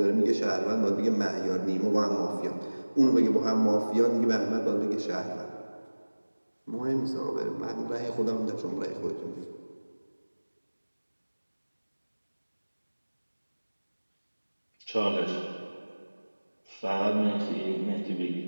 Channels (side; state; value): both; inverted; correlation -1.00